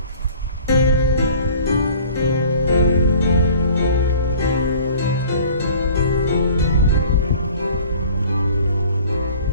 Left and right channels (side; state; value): both; inverted; correlation -0.48